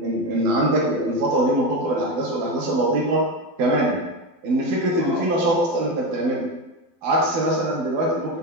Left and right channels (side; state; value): left; late; 12 ms